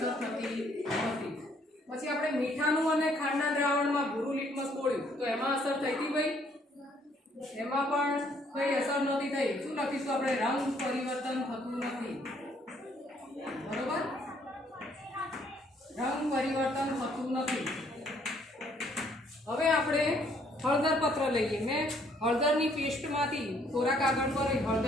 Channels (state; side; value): normal; both; correlation 0.65